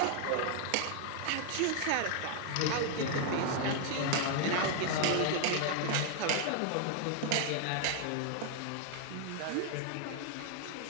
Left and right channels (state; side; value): different; both; correlation 0.00